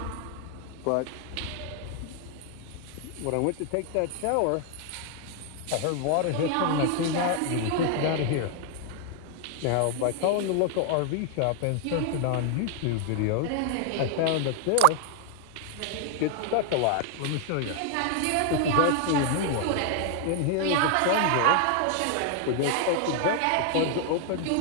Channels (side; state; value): both; different; correlation 0.00